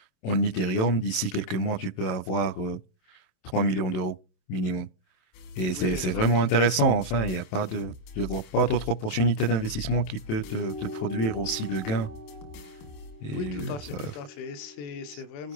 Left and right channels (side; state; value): right; late; 27 ms